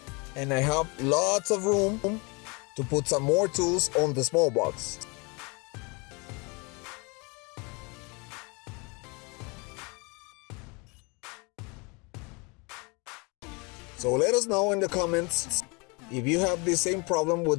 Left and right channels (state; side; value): quieter; right; 29.5 dB